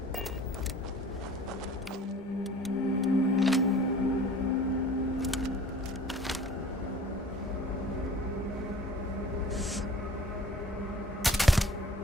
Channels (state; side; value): normal; both; correlation 0.47